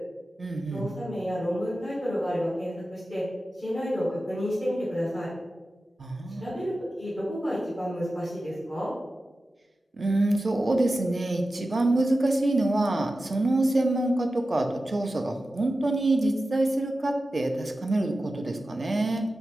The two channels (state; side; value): normal; both; correlation 0.93